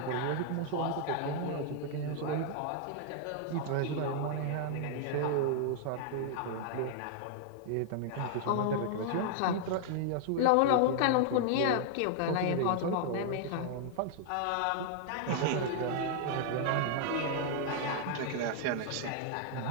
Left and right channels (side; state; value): both; different; correlation 0.00